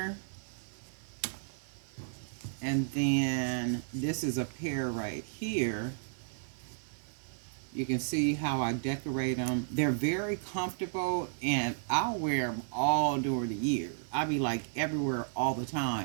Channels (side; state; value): left; silent; digital silence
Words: And then this is a pair right here. You can see how I decorate them. They're very comfortable and I'll wear them all during the year. I'll be like everywhere all the